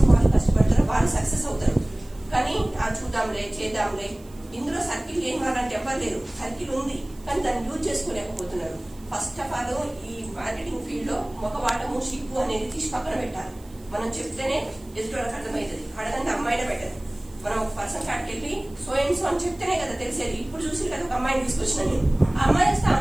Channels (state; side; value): noise; right; hiss, 26 dB below the sound